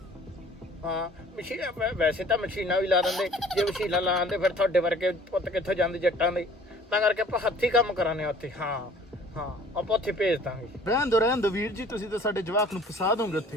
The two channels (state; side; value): normal; both; correlation 0.51